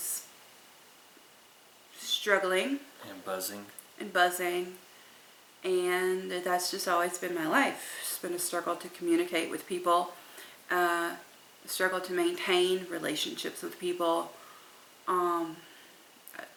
struggling And buzzing. and buzzing, and that's just always been my life. It's been a struggle to communicate with people, a struggle to maintain relationships with people. I've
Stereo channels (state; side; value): identical; both; correlation 1.00